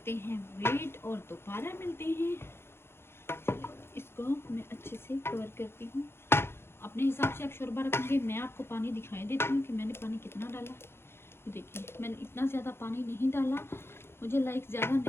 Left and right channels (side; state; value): right; late; 0.12 ms